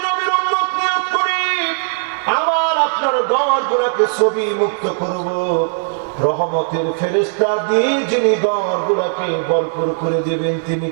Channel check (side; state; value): left; silent; digital silence